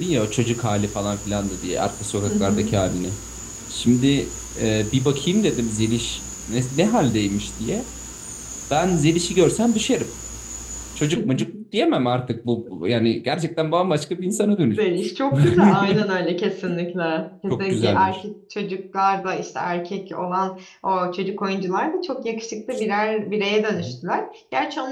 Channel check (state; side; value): identical; both; correlation 1.00